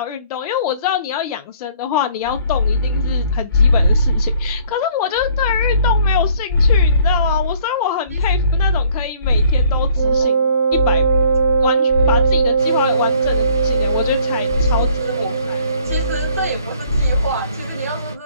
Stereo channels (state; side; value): inverted; both; correlation -0.59